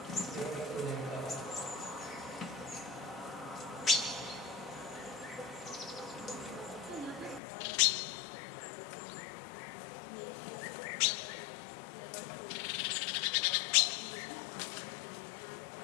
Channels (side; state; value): right; drops out; at 7.4 s